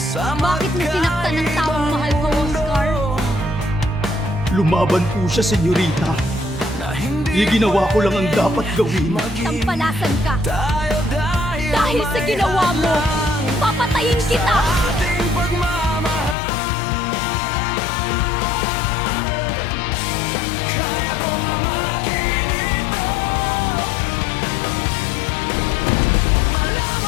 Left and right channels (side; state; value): right; drops out; at 16.4 s